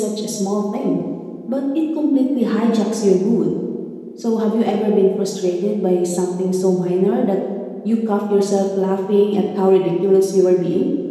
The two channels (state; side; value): identical; both; correlation 1.00